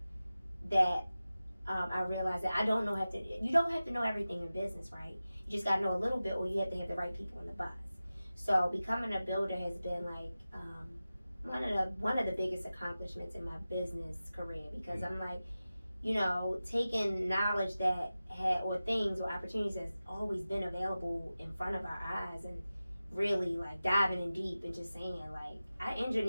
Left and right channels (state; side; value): inverted; both; correlation -0.95